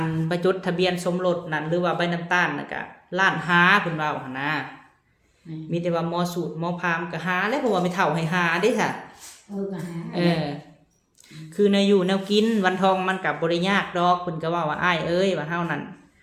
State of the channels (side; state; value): both; identical; correlation 1.00